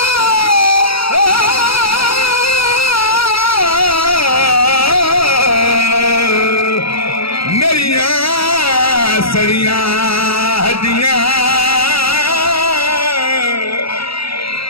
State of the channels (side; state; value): right; late; 0.76 ms